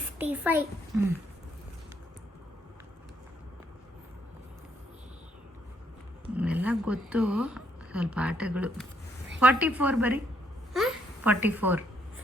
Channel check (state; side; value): normal; both; correlation 0.72